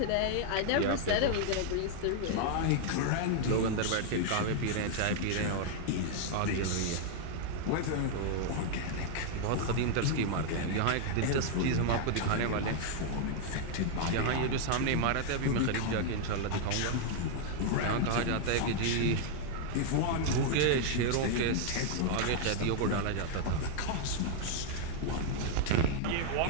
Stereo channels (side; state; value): both; different; correlation 0.00